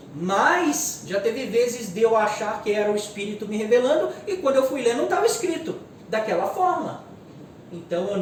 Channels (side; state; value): both; identical; correlation 1.00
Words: Mas já teve vezes de eu achar que era o Espírito me revelando, e quando eu fui ler não estava escrito daquela forma. Então eu